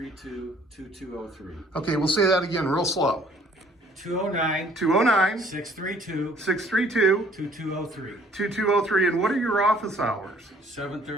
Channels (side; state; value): both; normal; correlation 0.59